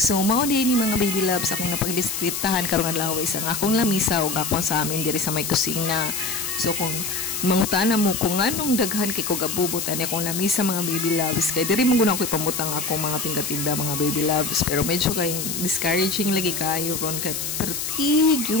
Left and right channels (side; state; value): left; noise; hiss, 3 dB below the sound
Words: mao din ni mga baby loves akong napagdisitahan karong adlaw isang akong lamisa ug akong sa amin diri sa may kusina. So kung mangutana mo kung anong daghan kay ko gabubot ani akong lamisa mga baby loves, kay diri man gud ako ipamutang ako mga tinda-tinda mga baby loves, pero medyo kay discouraging lagi kayo ron kay pertig